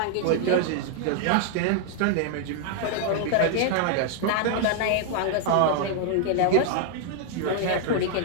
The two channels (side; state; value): both; different; correlation 0.00